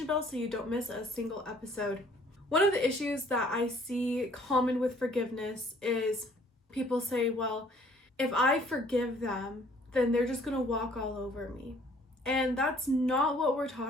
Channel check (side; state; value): both; normal; correlation 0.58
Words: bell so you don't miss a single episode. One of the issues that I see common with forgiveness is people say, well, if I forgive them, then they're just going to walk all over me. And that's not what we're